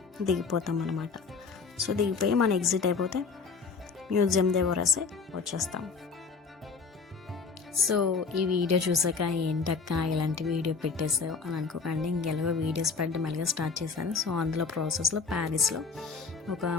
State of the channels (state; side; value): quieter; right; 5.1 dB